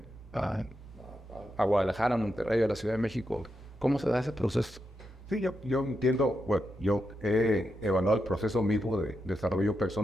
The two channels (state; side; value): normal; both; correlation 0.85